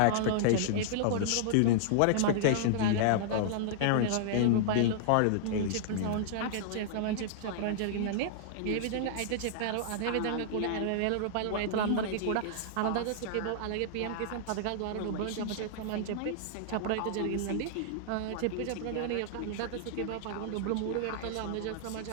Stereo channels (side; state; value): both; different; correlation -0.01